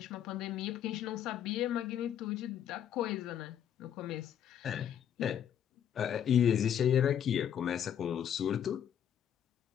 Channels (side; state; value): right; quieter; 9.4 dB